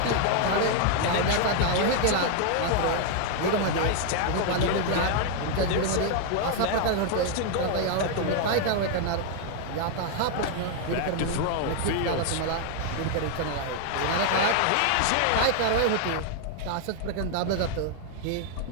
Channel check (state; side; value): different; both; correlation 0.00